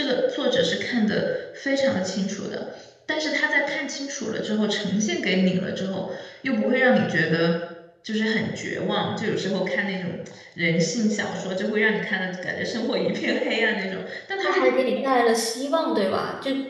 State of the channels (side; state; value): both; identical; correlation 1.00